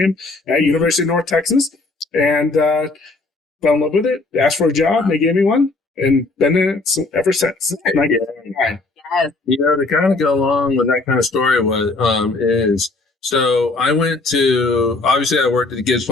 at University of North Texas, and fell in love with it. Asked for a job, and they gave me one, and been in it ever since. And I get it. You know, to kind of go along with that kind of story, is so I went to, obviously I worked at the Gibbs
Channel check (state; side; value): quieter; right; 3.4 dB